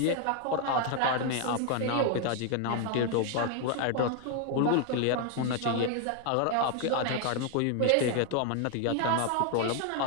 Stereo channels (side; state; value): both; different; correlation 0.01